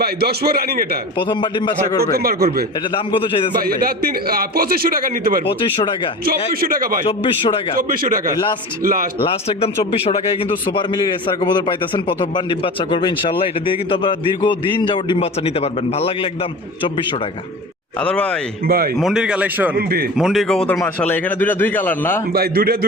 ভাই 10 বার রানিং। এটা প্রথমবার ডিম বাচ্চা করবে? প্রথমবার করবে। এটা দাম কত চাইতেছেন ভাই? এটা 2500 টাকা নিতে পারবে। 2500 টাকা। 2400 টাকা ভাই। 2400 টাকা। 2400 টাকা। লাস্ট একদম 2400 টাকায় কিন্তু সুপার মিলি রেসার কবুতর পাইতেছেন। প্রথমবার ডিম বাচ্চা করবে ইনশাআল্লাহ। এটা দিয়ে কিন্তু আপনারা দীর্ঘদিন যাবত ডিম বাচ্চা নিতে পারবেন। ভালো লাগলে একদম 2400 টাকা। আদর ভাই, মন্ডির কালেকশন। মন্ডির কবুতর মাশাআল্লাহ এখানে দুই কালার না ভাই?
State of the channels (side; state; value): both; normal; correlation 0.33